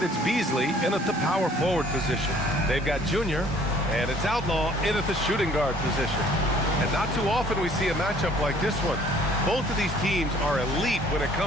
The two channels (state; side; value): normal; both; correlation 0.57